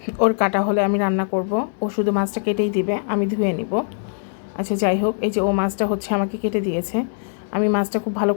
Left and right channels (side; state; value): right; silent; 64 dB below the other